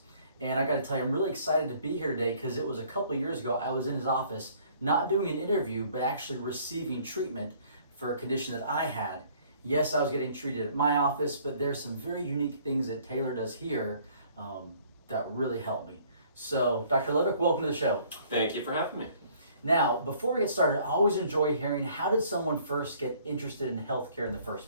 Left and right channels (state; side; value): inverted; both; correlation -0.58